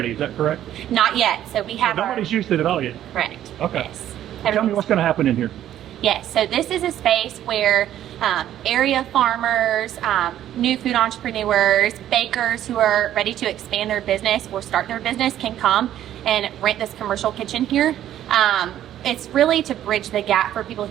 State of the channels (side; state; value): left; quieter; 11.7 dB